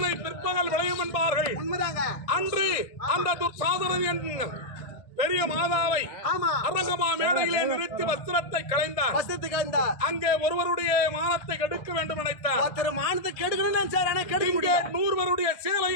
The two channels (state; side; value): late; right; 1.6 ms